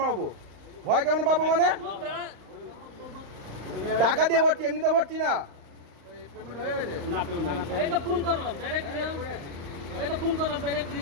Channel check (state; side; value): late; left; 35 ms